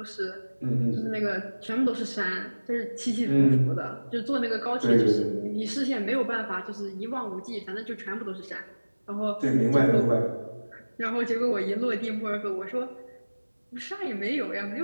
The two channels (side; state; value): both; inverted; correlation -1.00